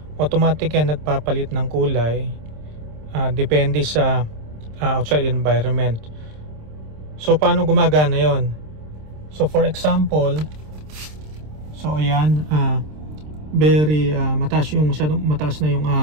Automatic yan nagpapalit ng kulay depende sa outside environment. So paano gumagana yon? So for example, so ayan, very masyadong mataas na yung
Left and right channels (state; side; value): late; left; 26 ms